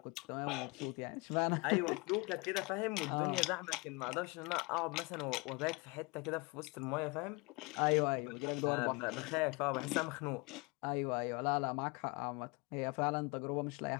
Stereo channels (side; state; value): right; quieter; 27.4 dB